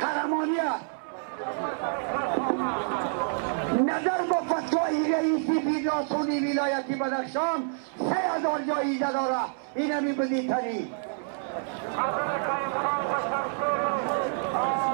نظر با فتوای رئیسی فدراسیون ولایتی بدخشان 3000 جایزه داره. این همی بدی تری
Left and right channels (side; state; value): left; silent; 59 dB below the other